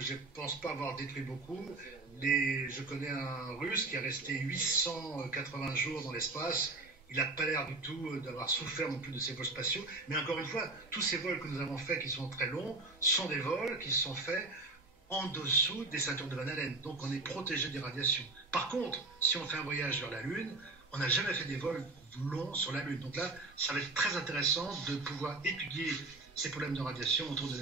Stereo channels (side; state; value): left; quieter; 3.2 dB